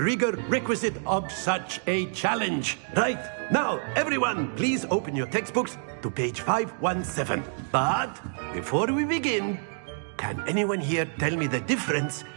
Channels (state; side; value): silent; left; 60 dB below the other